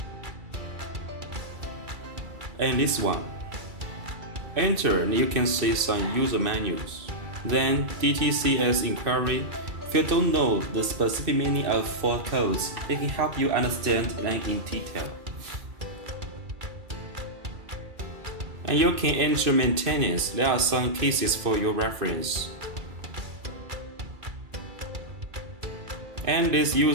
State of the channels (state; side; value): late; left; 2.3 ms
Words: And this one. Enter and you can see some user manuals. Then DTCS inquiry. If you don't know the specific meaning of fault codes, it can help you understand them in detail. And you can enter maintenance. There are some cases for your reference. And this